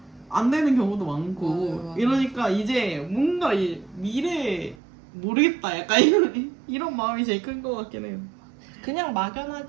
안 되는 경우도 많고 맞아요. 이러니까 이제 뭔가 이 미래 모르겠다 약간 이런 마음이 제일 큰 것 같긴 해요. 그냥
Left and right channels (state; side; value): drops out; left; at 4.8 s